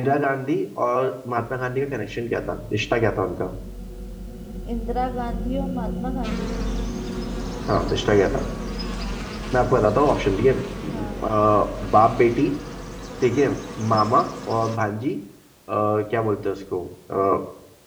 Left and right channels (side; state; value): both; identical; correlation 1.00